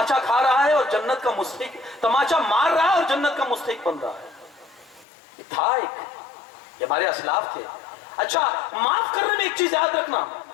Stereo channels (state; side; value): drops out; right; at 5.1 s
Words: کھا رہا ہے اور جنت کا مستحق, تماچا مار رہا ہے اور جنت کا مستحق بن رہا ہے. یہ تھا ایک, یہ ہمارے اسلاف تھے. اچھا, معاف کرنے میں ایک چیز یاد رکھنا,